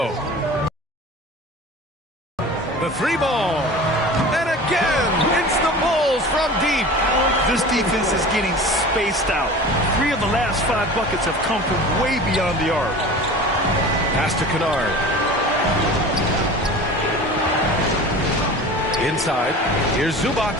The 3-ball. And again, it's the Bulls from deep. This defense is getting spaced out. 3 of the last 5 buckets have come from way beyond the arc. Pass to Kennard. Inside. Here's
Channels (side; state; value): both; normal; correlation 0.37